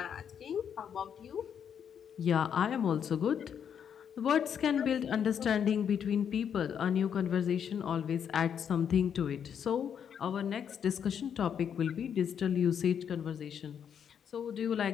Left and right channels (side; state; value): right; quieter; 8.1 dB